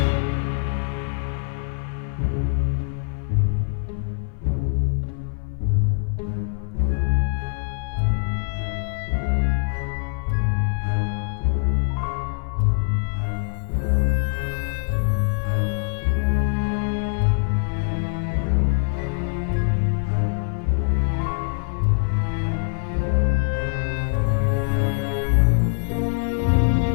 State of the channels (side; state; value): right; silent; 58 dB below the other